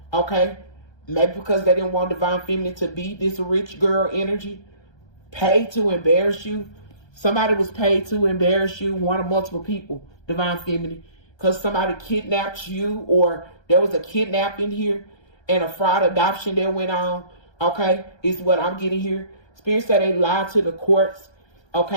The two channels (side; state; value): right; late; 1.3 ms